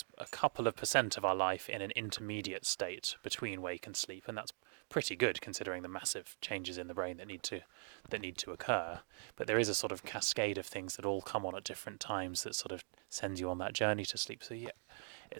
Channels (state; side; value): silent; left; digital silence